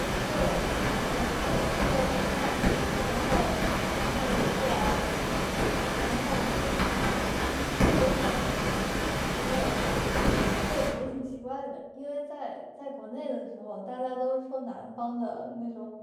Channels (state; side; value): identical; both; correlation 1.00